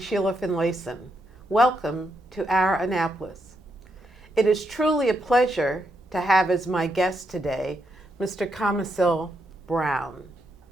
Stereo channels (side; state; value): both; normal; correlation 0.80